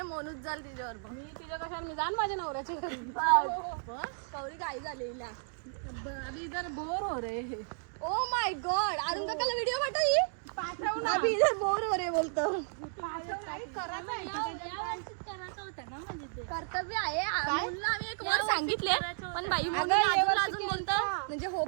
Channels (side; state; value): left; silent; digital silence